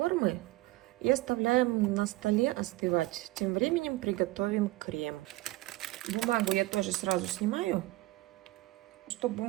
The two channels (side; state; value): left; quieter; 19.5 dB